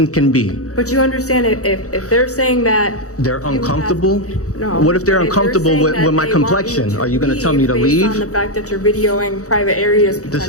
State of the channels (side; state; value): right; late; 0.65 ms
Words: can be. But you understand if they're saying that... They're you have- uncomfortable? No. What if they're But uncomfortable saying with that my they want complexion? you Are you going to tell me to based leave? on the fact that you're videoing private areas This